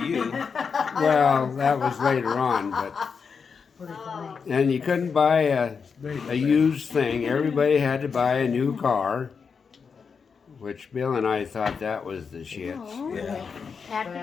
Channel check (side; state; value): right; quieter; 5.8 dB